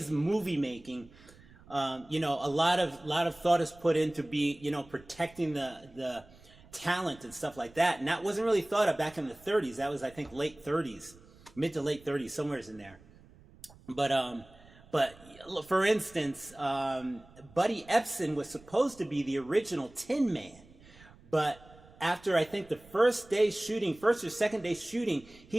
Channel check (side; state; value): right; noise; rumble, 24 dB below the sound